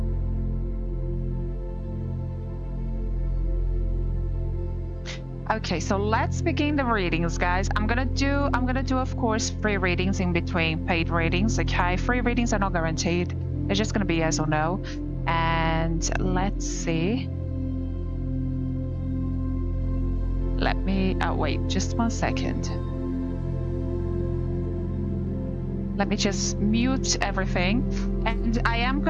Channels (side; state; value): both; identical; correlation 1.00